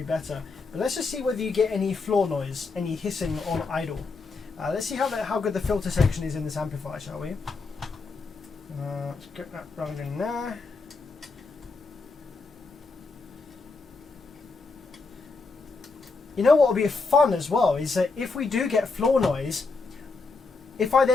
better. But let's just see whether you get any floor noise, any hissing on idle. Let's see how good the filter section is in this amplifier, shall we? Let's get that running there. You know what will be fun as well is that if we do get floor noise, if I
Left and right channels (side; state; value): right; quieter; 4.1 dB